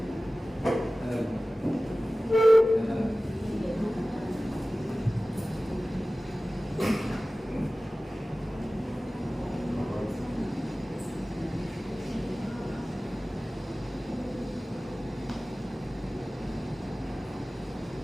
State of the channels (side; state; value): both; normal; correlation 0.97